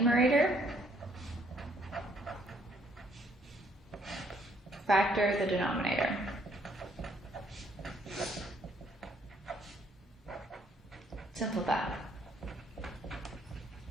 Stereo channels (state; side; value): normal; both; correlation 0.66